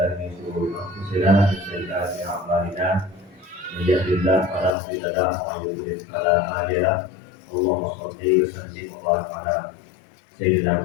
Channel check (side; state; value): right; drops out; at 4.8 s